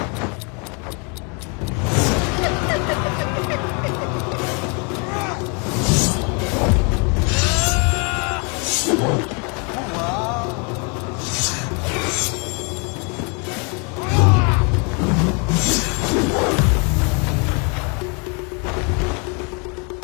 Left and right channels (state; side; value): quieter; right; 34.6 dB